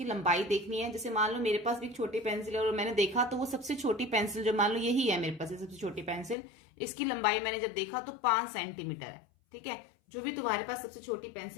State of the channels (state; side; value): drops out; right; at 6.4 s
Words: लंबाई देखनी है। जैसे मान लो मेरे पास भी एक छोटी पेंसिल है और मैंने देखा तो वो सबसे छोटी पेंसिल, जो मान लो यही है मेरे पास सबसे छोटी पेंसिल, इसकी लंबाई मैंने जब देखा तो 5 सेंटीमीटर है। ठीक है, जो भी तुम्हारे पास सबसे छोटी